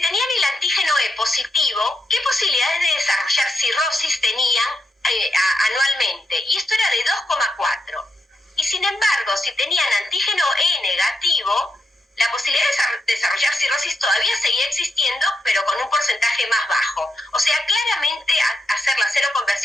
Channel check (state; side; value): normal; both; correlation 0.83